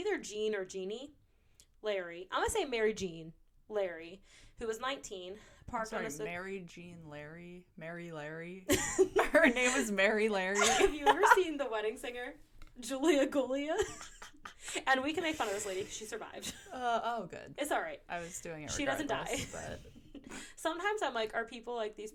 Jean or Jeannie, Larry. I'm going to say Mary Jean Larry, who was 19, parked on a... Mary Jean Larry? Mary Larry? Her name is Mary Larry. Have you ever seen The Wedding Singer? Julia Gulia? And we can make fun of this lady because she survived. Oh, good. It's all right. I was doing it She doesn't die. But... Sometimes I'm like, are people like these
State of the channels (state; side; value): identical; both; correlation 1.00